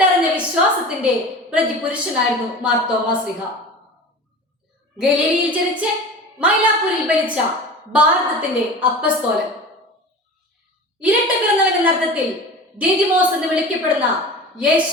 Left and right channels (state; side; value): normal; both; correlation 0.35